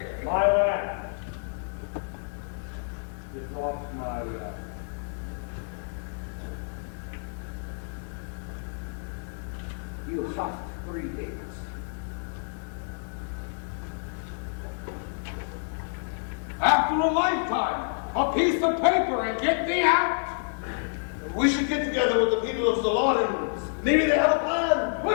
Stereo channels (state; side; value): silent; right; 59 dB below the other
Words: My land. Get off my land. You have 3 days. After a lifetime, a piece of paper and get me out. We should get together with the people of Zalatan. Maybe they have a plan. We